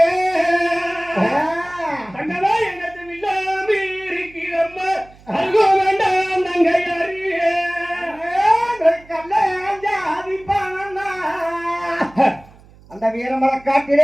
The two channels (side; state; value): right; noise; hum, 25 dB below the sound